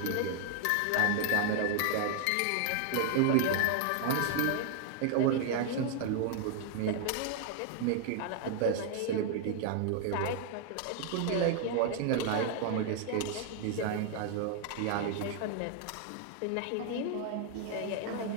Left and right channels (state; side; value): different; both; correlation 0.00